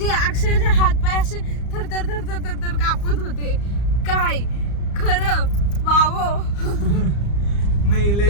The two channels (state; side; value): late; right; 34 ms